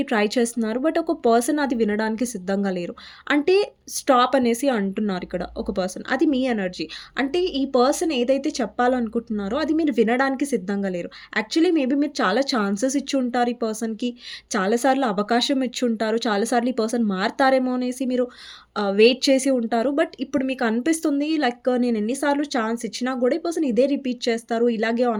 ట్రై చేస్తున్నారు. బట్ ఒక పర్సన్ అది వినడానికి సిద్ధంగా లేరు. అంటే స్టాప్ అనేసి అంటున్నారు ఇక్కడ ఒక పర్సన్. అది మీ ఎనర్జీ. అంటే ఈ పర్సన్ ఏదైతే చెప్పాలనుకుంటున్నారో అది మీరు వినడానికి సిద్ధంగా లేరు. యాక్చువల్లీ మేబీ మీరు చాలా ఛాన్సెస్ ఇచ్చుంటారు ఈ పర్సన్‌కి. చాలా సార్లు అవకాశం ఇచ్చుంటారు. చాలా సార్లు ఈ పర్సన్ మారతారేమో అనేసి మీరు వెయిట్ చేసి ఉంటారు. బట్ ఇప్పుడు మీకు అనిపిస్తుంది లైక్ నేను ఎన్ని సార్లు ఛాన్స్ ఇచ్చినా గూడా ఈ పర్సన్ ఇదే రిపీట్ చేస్తారు. ఇలాగే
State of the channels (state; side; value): identical; both; correlation 1.00